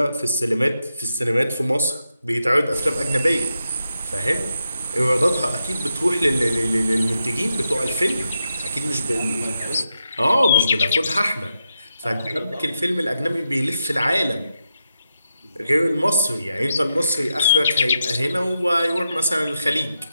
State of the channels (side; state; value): both; inverted; correlation -0.87